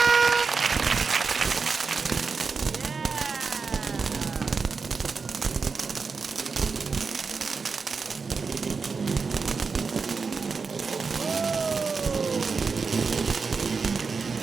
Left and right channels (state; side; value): quieter; left; 4.9 dB